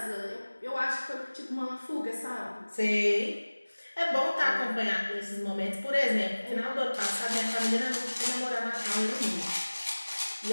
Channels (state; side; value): inverted; both; correlation -1.00